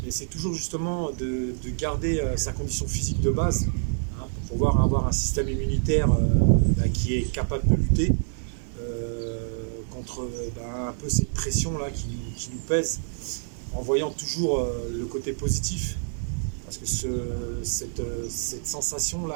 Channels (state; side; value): silent; left; digital silence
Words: Et c'est toujours justement de garder sa condition physique de base pour pouvoir avoir un système immunitaire qui est capable de lutter contre un peu cette pression là qui nous pèse, en voyant toujours le côté positif, parce que cette sensation là